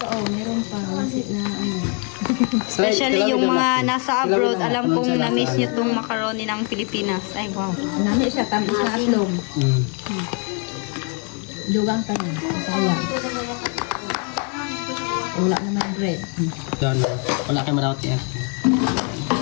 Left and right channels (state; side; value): quieter; right; 36.6 dB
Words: oh, meron pa. Masit na, ano. Especially yung mga nasa abroad, alam kong na-miss niyo tong macaroni ng Pilipinas. Ay, wow. Nami siya, tamis na aslong. Mm. Dugang pa niya. Sayang. Wala naman bread. Yan, wala kayo malawat yan.